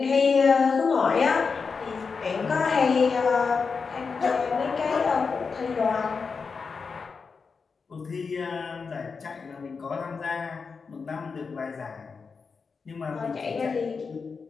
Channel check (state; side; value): quieter; right; 5.1 dB